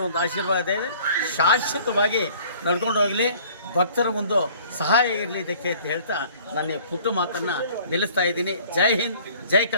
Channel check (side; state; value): both; inverted; correlation -0.53